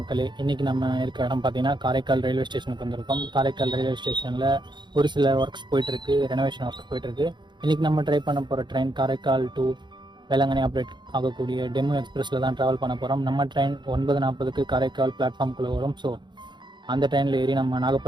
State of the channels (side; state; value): left; late; 0.22 ms